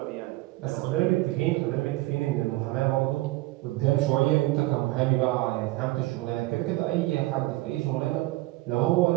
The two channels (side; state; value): left; quieter; 19.7 dB